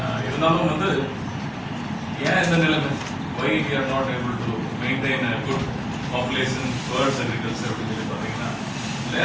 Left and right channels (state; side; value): identical; both; correlation 1.00